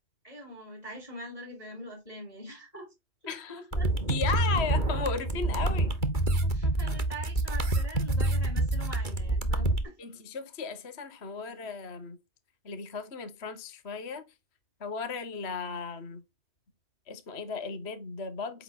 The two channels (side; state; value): right; late; 2.3 ms